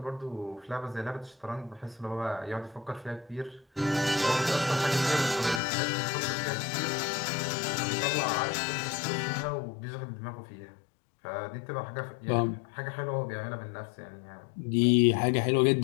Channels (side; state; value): right; drops out; at 5.6 s